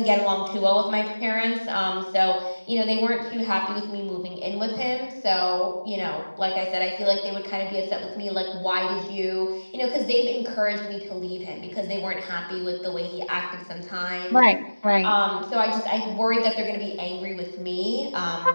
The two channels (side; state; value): both; inverted; correlation -1.00